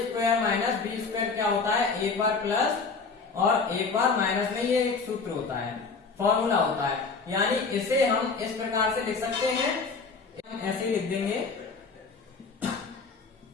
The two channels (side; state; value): right; quieter; 4.6 dB